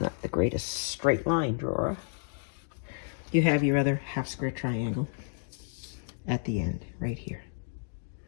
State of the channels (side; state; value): right; silent; digital silence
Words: the greatest straight line drawer, you have your other 1/2 square triangle at the end, right here.